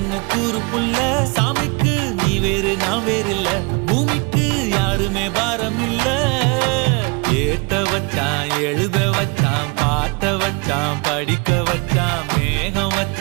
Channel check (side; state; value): left; quieter; 31.3 dB